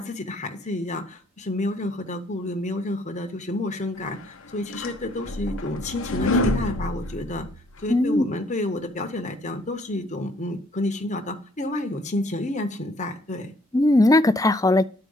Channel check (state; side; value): normal; both; correlation 0.64